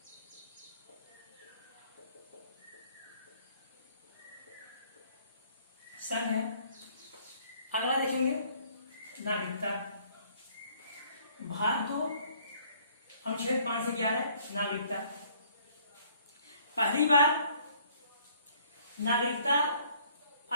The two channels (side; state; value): both; inverted; correlation -0.60